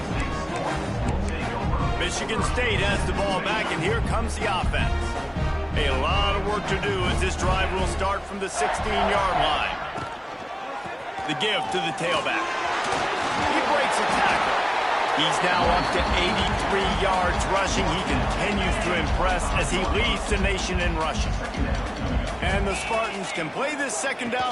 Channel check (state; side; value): identical; both; correlation 1.00